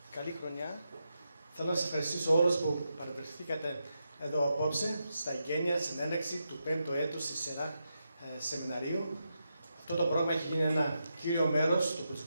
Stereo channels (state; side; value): inverted; both; correlation -0.86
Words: καλή χρονιά. Θέλω να σας ευχαριστήσω όλους που παρευρεθήκατε εδώ απόψε, στα εγγένεια συνέναξη του 5ου έτους στη σειρά σεμιναρίου. Αυτό το πρόγραμμα έχει γίνει ένα κύριο μέρος του